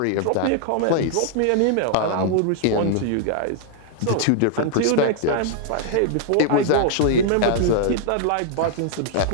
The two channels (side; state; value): both; different; correlation -0.01